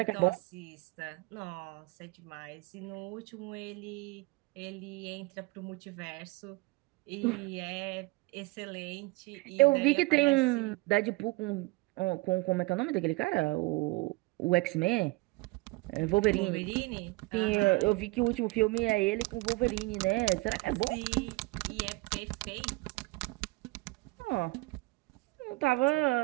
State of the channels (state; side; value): quieter; left; 23.5 dB